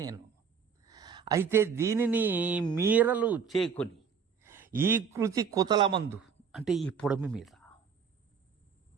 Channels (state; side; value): quieter; left; 6.6 dB